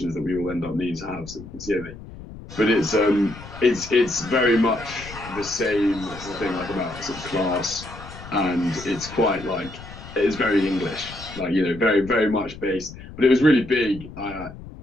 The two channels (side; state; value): left; noise; rumble, 15 dB below the sound